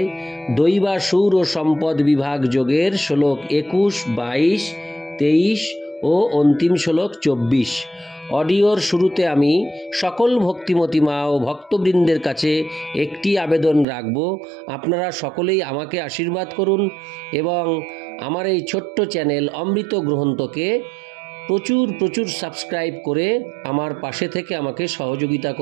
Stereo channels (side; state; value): left; drops out; at 13.9 s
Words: দৈবাসুর ও সম্পদ বিভাগ যোগের শ্লোক 21, 22, 23 ও অন্তিম শ্লোক 24। অডিওর শুরুতে আমি সকল ভক্তিমতী মা ও ভক্তবৃন্দের কাছে একটি আবেদন রাখব, আপনারা সকলেই আমাকে আশীর্বাদ করুন এবং আমার এই ছোট্ট চ্যানেল অমৃত গ্রন্থকে প্রচুর সাবস্ক্রাইব করে আমার পাশে থেকে আমাকে সহযোগিতা